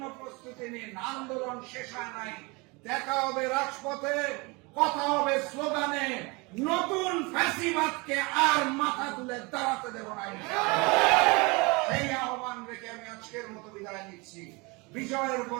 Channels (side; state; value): left; quieter; 27.1 dB